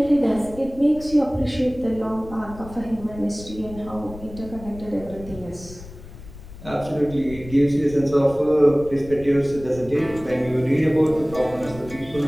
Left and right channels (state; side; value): noise; left; rumble, 16 dB below the sound